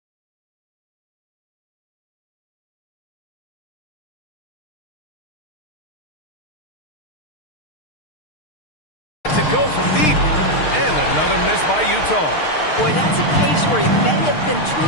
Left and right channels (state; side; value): late; right; 6.5 ms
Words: To go from deep. And another miss by Utah. Boy, that's a case where he may have been too